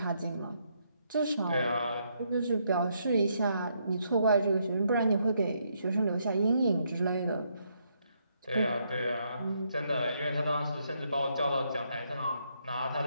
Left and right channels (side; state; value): both; inverted; correlation -0.75